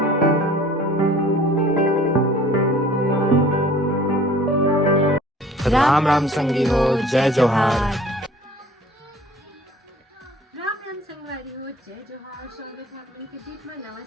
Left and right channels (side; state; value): both; normal; correlation 0.50